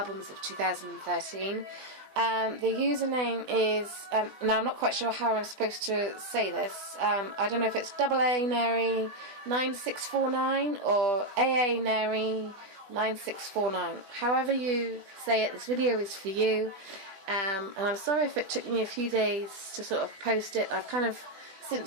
of 2013. The username is, now I'm not quite sure how I'm supposed to say this. I don't know if it's AA Nary9649 or AA Nary9649. However you say it, this video is for you. And I'm sorry if it took me a few days to sort of post it. I've kind of,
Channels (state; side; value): late; left; 20 ms